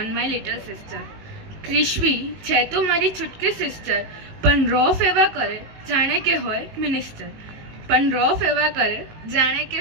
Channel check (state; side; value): late; left; 18 ms